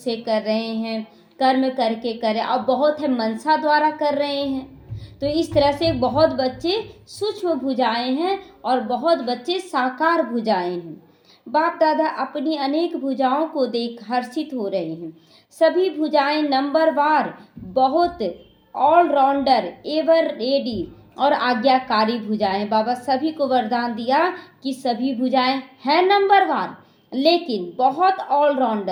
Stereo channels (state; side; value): identical; both; correlation 1.00